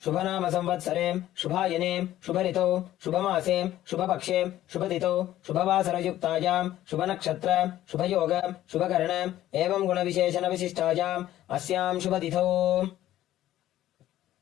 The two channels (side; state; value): right; quieter; 13.5 dB